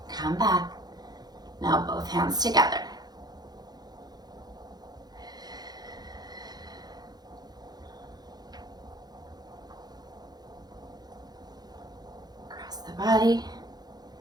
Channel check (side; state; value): left; late; 0.19 ms